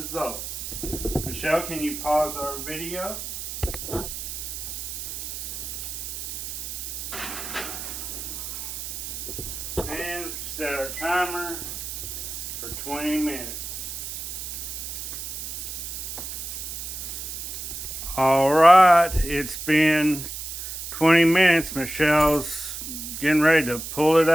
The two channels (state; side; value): noise; right; hiss, 7 dB below the sound